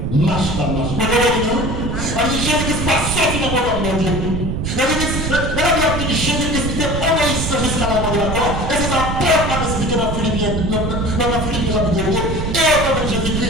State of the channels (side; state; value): right; noise; rumble, 2 dB below the sound